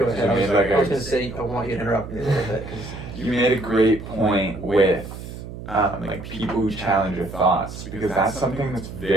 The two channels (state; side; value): noise; right; hum, 11 dB below the sound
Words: ahead. I was gonna say I want you to interrupt me a little bit. You made a great point with like people who challenge your thoughts, because that's something that's